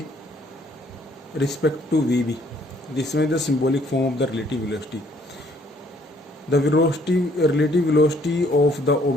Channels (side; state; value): both; normal; correlation 0.64